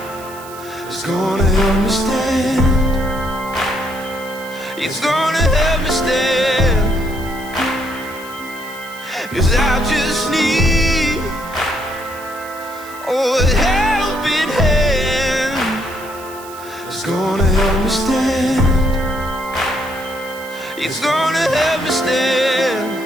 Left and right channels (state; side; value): noise; right; hiss, 18 dB below the sound